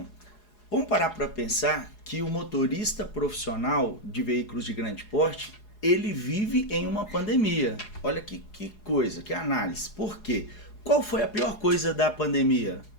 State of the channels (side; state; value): right; late; 4.8 ms